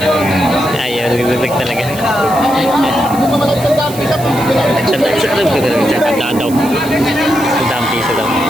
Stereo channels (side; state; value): right; noise; hiss, 14 dB below the sound